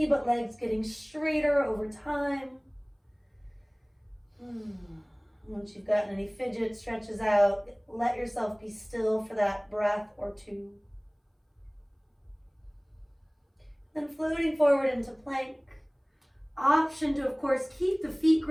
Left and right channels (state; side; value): identical; both; correlation 1.00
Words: but legs getting straighter over time. Once you've gotten any fidget stretches out, let yourself be still for that breath or two. Then floating forward into plank. Option to, of course, keep the feet